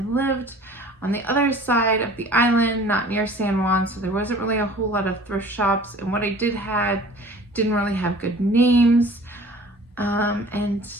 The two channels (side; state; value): both; normal; correlation 0.47